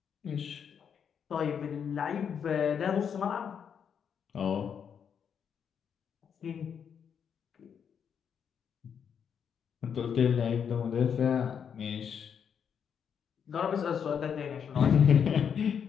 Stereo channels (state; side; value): quieter; right; 7.5 dB